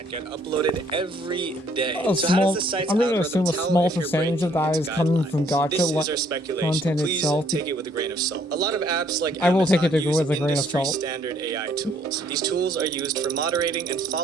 get uploaded every day. So how does the site's I'm going to algorithm assume a tell small if you're percentage breaking of that its is coming guidelines? from Gacha This is our speculation. content Please itself. take it with a grain of salt. A lot of apps like I will take Amazon it use with a grain of industry salt. standard AI tools. These tools are used for moderating and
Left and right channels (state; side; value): normal; both; correlation 0.64